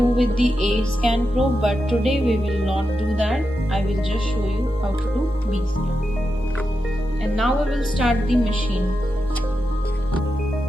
with the A scan probe, but today we will not do that. I will just show you how to do B scan. And now we will start the machine.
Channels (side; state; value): both; normal; correlation 0.88